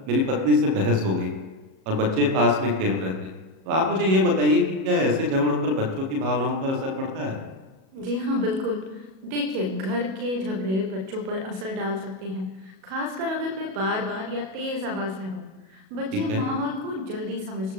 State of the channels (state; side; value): late; left; 37 ms